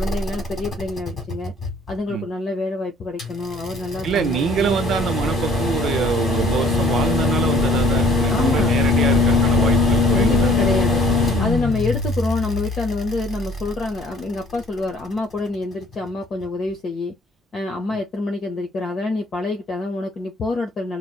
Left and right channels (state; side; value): normal; both; correlation 0.57